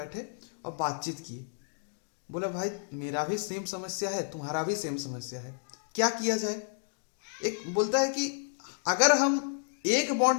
और बातचीत की, बोला भाई मेरा भी सेम समस्या है, तुम्हारा भी सेम समस्या है, क्या किया जाए? एक बोलता है कि अगर हम एक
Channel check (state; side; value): silent; right; digital silence